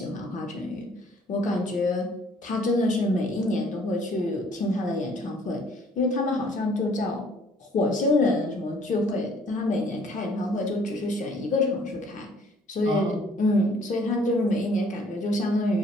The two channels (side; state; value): both; normal; correlation 0.59